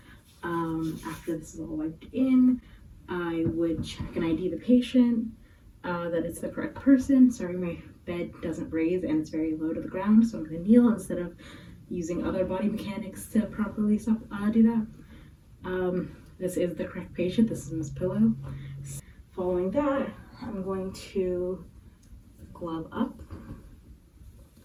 After this is all wiped in, I would check and ID the patient, that it's the correct person. Sorry, my bed doesn't raise and it's very low to the ground, so I'm going to kneel instead of using other body mechanics to properly do that. This is the correct patient. This is Miss Pillow. Following that, I'm going to glove up.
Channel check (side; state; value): both; identical; correlation 1.00